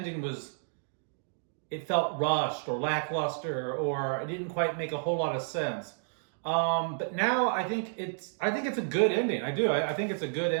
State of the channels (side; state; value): left; silent; digital silence